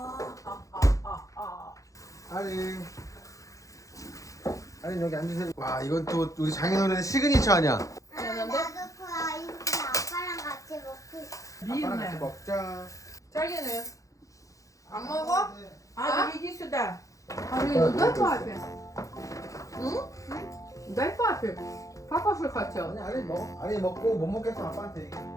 아니 여기 앉으세요. 와 이건 또 우리 장인어른의 시그니처 아니야? 미안한데? 나도 그 아이스크림 아빠랑 같이 먹고 싶어. 아빠랑 같이 먹자. 자기는 안 먹어? А, иди сюда. 아니 дай папе. 응? дай папе. Папа же хотел. 아니 아니 먹어. 아니 먹고 못 먹겠어 아빠한테 얘기해.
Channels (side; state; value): right; late; 0.16 ms